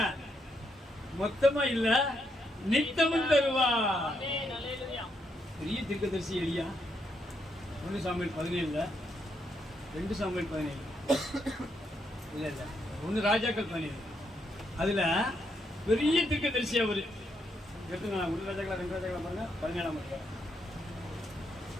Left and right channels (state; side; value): normal; both; correlation 0.78